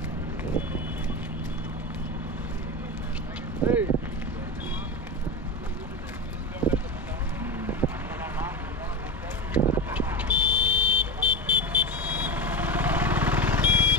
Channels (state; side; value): normal; both; correlation 0.21